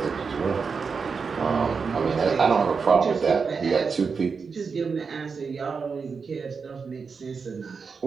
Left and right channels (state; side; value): quieter; left; 5.3 dB